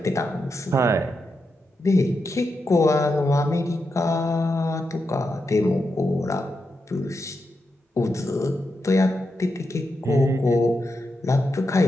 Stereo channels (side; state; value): both; normal; correlation 0.86